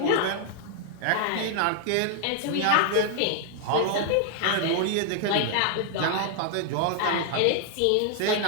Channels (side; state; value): both; different; correlation 0.00